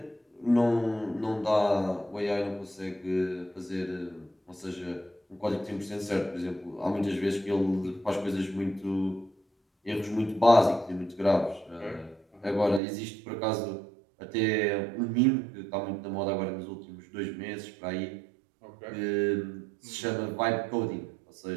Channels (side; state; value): left; drops out; at 12.8 s